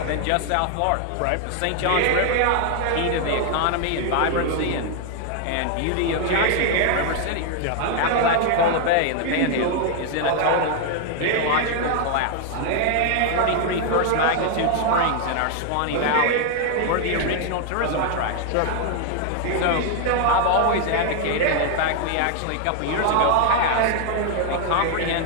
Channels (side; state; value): both; different; correlation 0.00